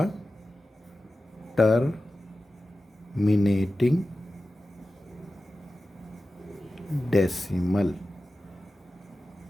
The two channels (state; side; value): normal; both; correlation 0.94